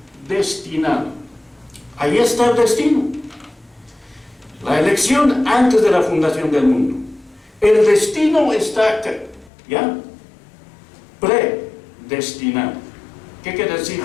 predestinado. Ahí está el destino. La elección antes de la fundación del mundo. El destino está acá, ¿ya? Predestinado. ¿Qué quiere decir?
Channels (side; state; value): right; drops out; at 9.5 s